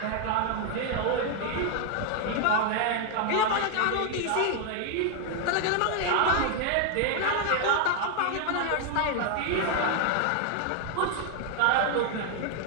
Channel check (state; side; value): different; both; correlation 0.00